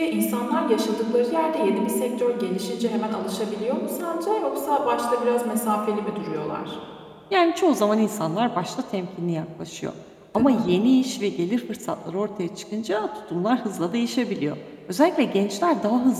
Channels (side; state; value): both; identical; correlation 1.00